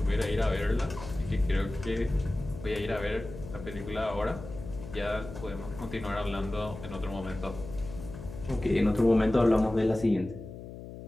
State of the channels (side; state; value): left; noise; hum, 12 dB below the sound